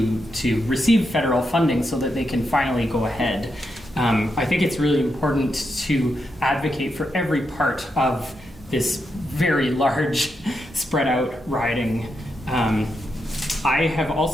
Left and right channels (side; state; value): both; normal; correlation 0.84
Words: receive federal funding so that they can finally go ahead. I think it's really important to advocate for every part of this very large, spread out riding. I have